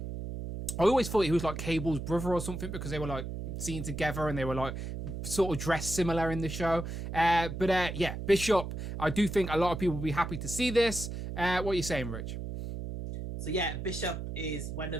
always thought he was like Cable's brother or something, because they were like seen together and they were like sort of dressed similar in the show. But Bishop, I do think a lot of people will be happy to see this. What are you saying, Rich? So yeah, Bishop is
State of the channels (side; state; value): right; noise; hum, 6 dB below the sound